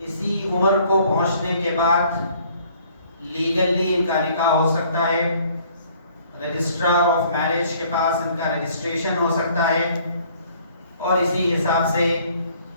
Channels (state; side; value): inverted; both; correlation -0.59